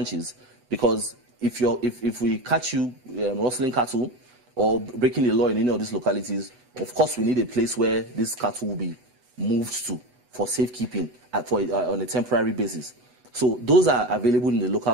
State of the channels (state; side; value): late; left; 8.2 ms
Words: because if we catch you rustling cattle or breaking the law in any of these localities, of course we need a place where this cattle will be moved to for safekeeping on a temporary basis. So those are available in the